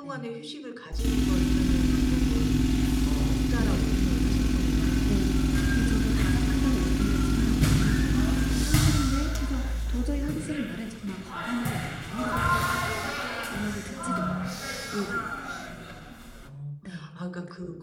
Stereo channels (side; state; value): both; identical; correlation 1.00